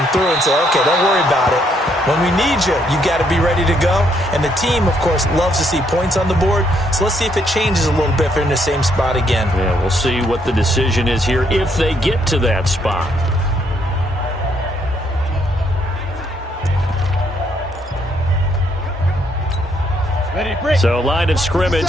through and say, okay, don't worry about it. When we need you, you got to be ready to go. And the team, of course, loves to see points on the board, so let's see if it changes a little bit if they're in the same spot again. Yeah, we'll see what the decision is here if they get to that spot. So line of scrimmage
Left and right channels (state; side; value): normal; both; correlation 0.72